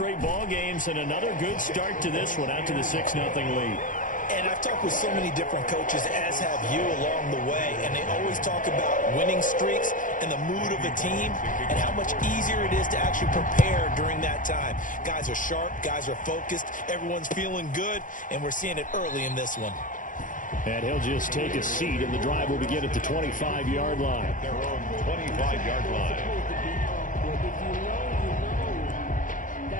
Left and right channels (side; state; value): right; late; 0.38 ms